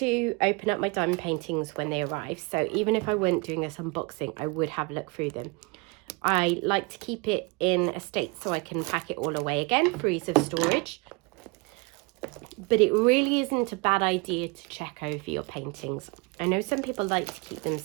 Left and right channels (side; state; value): left; quieter; 28.5 dB